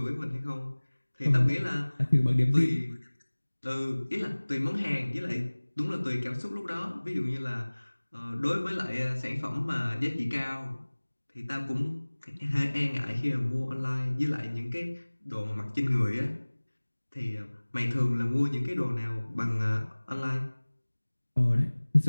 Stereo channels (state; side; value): inverted; both; correlation -1.00